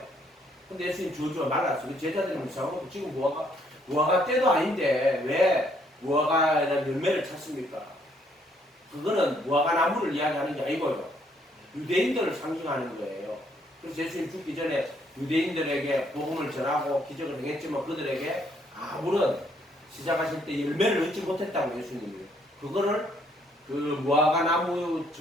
근데 예수님 저주가 말랐어요. 제자들이 무서워하고 지금 무화과 때도 아닌데 왜 무화과라는 열매를 찾습니까? 그거는 무화과나무를 이야기하는 게 아니고요. 유대인들을 상징하는 거예요. 그래서 예수님 죽기 전에 유대인들에게 복음을 전하고 기적을 행했지만 그들에게 아무런 시작하실 때 열매를 얻지 못했다고 예수님이. 그거를 그 무화과나무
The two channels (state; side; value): normal; both; correlation 0.68